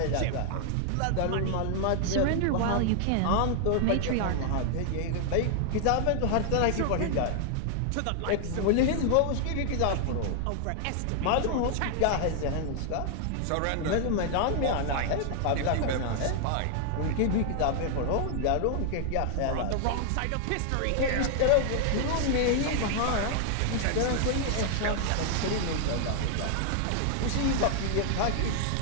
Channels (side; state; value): both; different; correlation 0.00